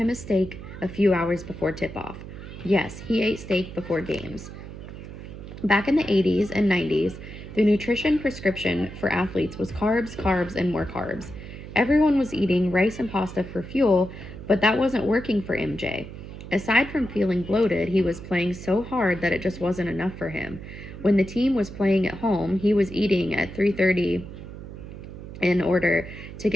a steak a few hours before tip-off. Yes, he ate steak before games. Back in the 80s and 90s, the nutrition prescription for athletes was carbs, carbs, and more carbs. Everyone was eating rice and pasta for fuel, but that wasn't working for MJ. Aside from feeling bloated, he was playing so hard that it just wasn't enough for him. When the team was playing at home, he was eating at 3:30 in order to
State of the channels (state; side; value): noise; right; hum, 12 dB below the sound